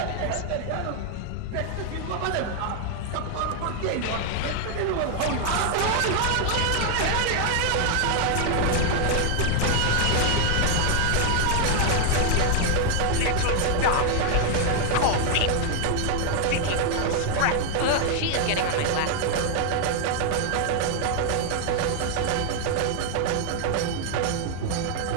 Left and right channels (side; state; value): both; different; correlation 0.00